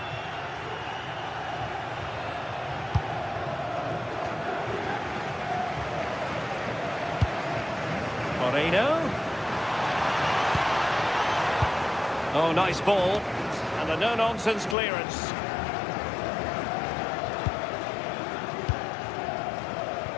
Moreno. Oh, nice ball. And a no-nonsense clearance.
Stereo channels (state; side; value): drops out; right; at 14.8 s